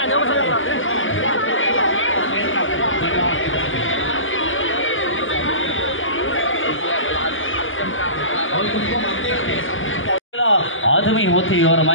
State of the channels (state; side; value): late; right; 0.58 ms